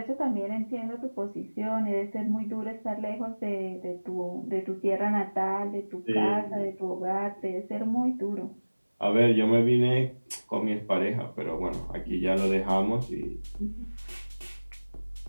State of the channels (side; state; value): both; inverted; correlation -1.00